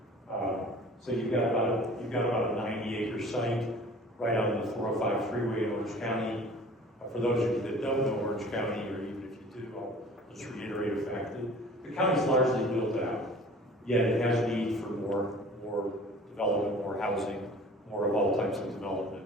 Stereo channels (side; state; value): both; normal; correlation 0.46